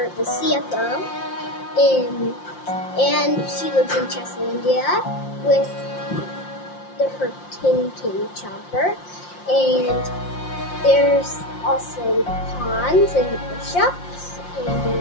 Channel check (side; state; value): right; late; 5.7 ms